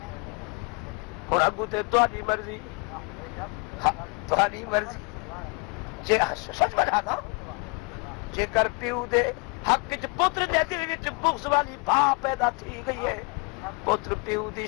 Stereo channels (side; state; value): right; quieter; 30.9 dB